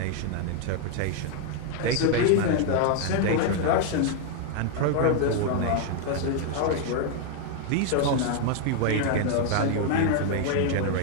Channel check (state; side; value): different; both; correlation 0.00